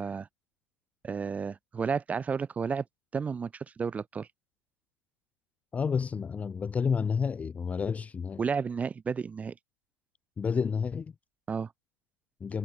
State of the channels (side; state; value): both; normal; correlation 0.81